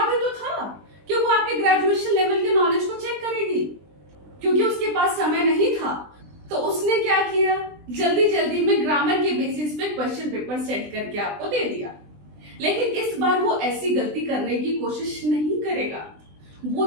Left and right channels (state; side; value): late; left; 20 ms